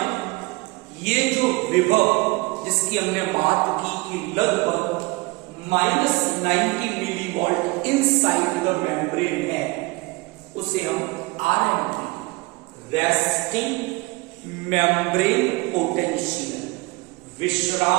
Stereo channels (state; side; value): quieter; left; 24.4 dB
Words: ये जो विभव जिसकी हमने बात की कि लगभग -90 milli volt inside the membrane है, उसे हम आरएमपी, रेस्टिंग मेम्ब्रेन पोटेंशियल,